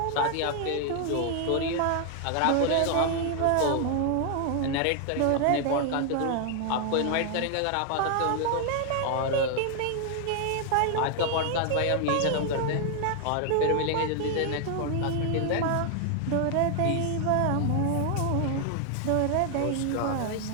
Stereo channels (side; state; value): both; different; correlation 0.00